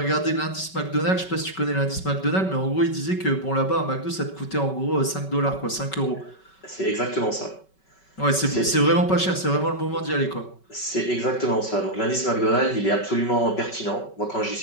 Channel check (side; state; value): right; late; 5.3 ms